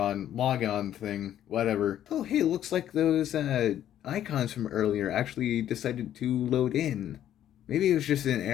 log on thing, whatever. Oh, hey, looks like those icons from earlier actually decided to load in. Maybe it was just an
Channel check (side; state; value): right; quieter; 11.3 dB